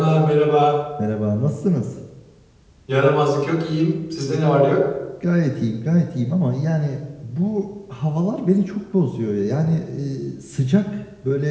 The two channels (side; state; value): both; identical; correlation 1.00